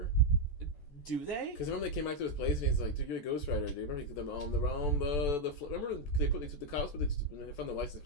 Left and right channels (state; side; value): late; right; 14 ms